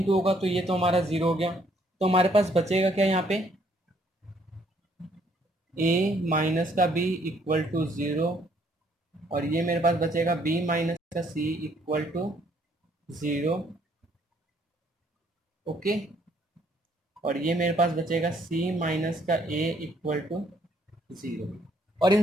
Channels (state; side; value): normal; both; correlation 0.66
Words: होगा, तो ये तो हमारा 0 हो गया, तो हमारे पास बचेगा क्या यहाँ पे, ए माइनस का बी इक्वल टू 0, और ये मेरे पास बचेगा बी माइनस का सी इक्वल टू 0। ओके, और ये मेरे पास बचेगा c माइनस का a इक्वल टू 0, और इन